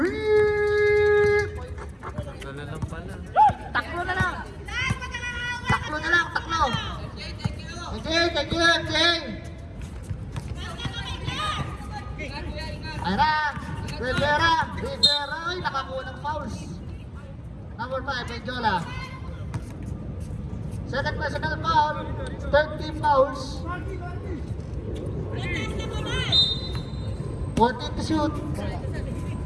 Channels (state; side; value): identical; both; correlation 1.00